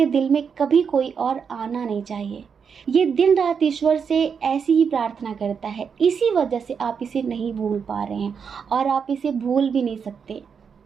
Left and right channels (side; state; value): left; quieter; 6.5 dB